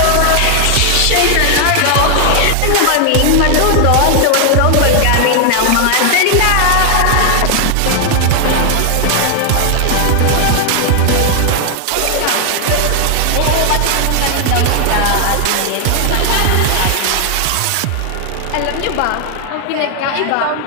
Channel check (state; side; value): different; both; correlation 0.00